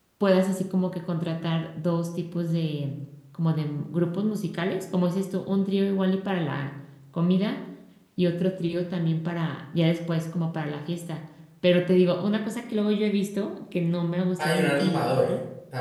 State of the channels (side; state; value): both; identical; correlation 1.00